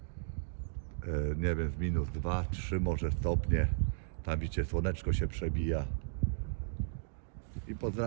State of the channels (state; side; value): silent; left; digital silence